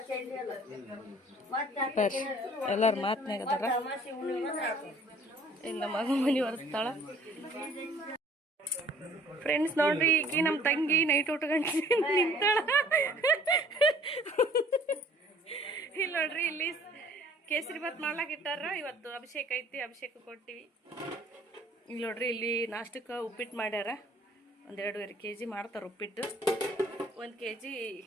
ಎಲ್ಲಾರು ಮಾತನಾಗ ಅದಾರ. ಇಲ್ಲ ಮಗ ಮನಿ ಒರೆಸ್ತಾಳ. ಫ್ರೆಂಡ್ಸ್ ನೋಡ್ರಿ, ಈಗ ನಮ್ಮ ತಂಗಿ ನೈಟ್ ಉಟ್ಕೊಂಡು ನಿಂತಾಳ. ಇಲ್ಲಿ ನೋಡ್ರಿ, ಇಲ್ಲಿ ಕೇಸರಿ ಭಾತ್ ಮಾಡ್ಲಾಕ ಇಟ್ಟಾರ. ಇವತ್ತು ಅಭಿಷೇಕ ಐತಿ, ಅಭಿಷೇಕ ಕೊಟ್ಟಿವಿ. ಇಲ್ಲಿ ನೋಡ್ರಿ, ಇಲ್ಲಿ ನಾಷ್ಟಕ್ಕೆ ಉಪ್ಪಿಟ್ಟು ಮಾಡ್ಯಾರ. 1.5 kg ಮಾಡ್ತಾರೆ ಉಪ್ಪಿಟ್ಟು. 1 kg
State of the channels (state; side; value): normal; both; correlation 0.54